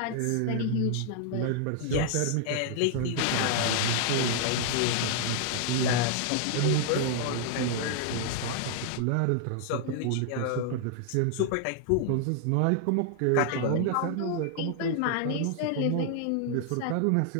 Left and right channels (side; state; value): both; different; correlation -0.01